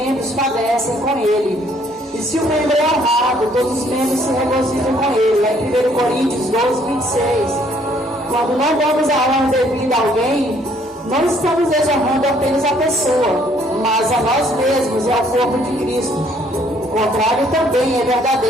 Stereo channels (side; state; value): both; normal; correlation 0.64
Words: padecem com ele. E se o membro é honrado, todos os membros se regozijam com ele. Lá em 1 Coríntios 12, 26. Quando não damos a honra devida a alguém, não estamos desonrando apenas a pessoa, mas a nós mesmos e ao corpo de Cristo. O contrário também é